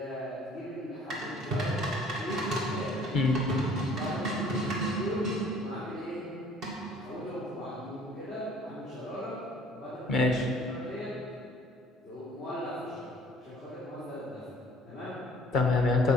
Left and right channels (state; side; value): normal; both; correlation 0.55